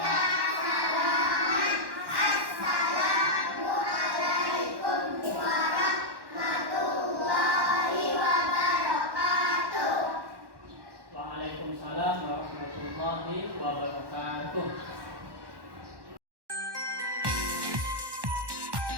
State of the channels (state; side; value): late; left; 1.1 ms